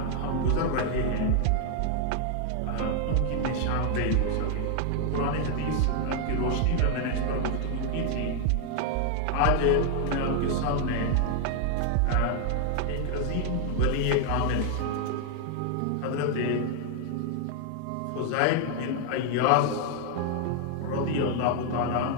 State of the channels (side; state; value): both; different; correlation 0.00